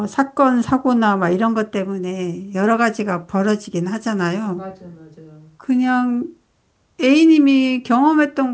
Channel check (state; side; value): identical; both; correlation 1.00